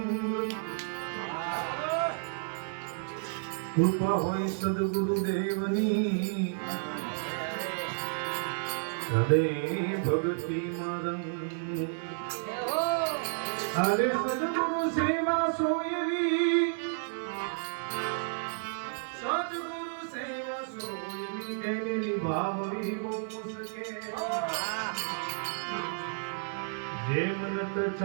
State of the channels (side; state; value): left; silent; 57 dB below the other